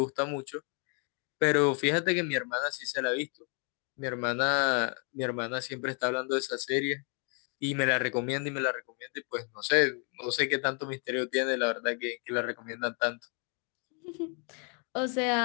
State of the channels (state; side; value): quieter; right; 39.7 dB